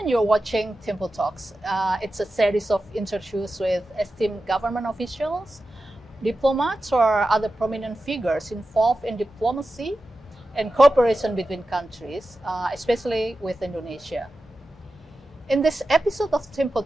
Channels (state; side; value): normal; both; correlation 0.92